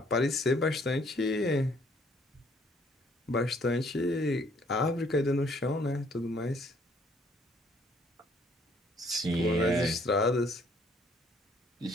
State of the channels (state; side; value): normal; both; correlation 0.63